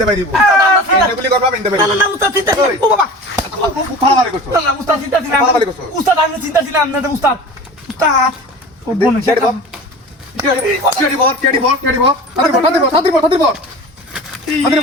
পারিব গুলি করবা আমি ইনতে পারিব না উস্তাদ চিন্তা ও বাবা ফালামারি করছো না উস্তাদ চিন্তা ছিলাম ফালামারি করছো উস্তাদ আমি চিন্তা ছিলাম না উস্তাদ ও বোন কেডি বল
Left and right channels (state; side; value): normal; both; correlation 0.37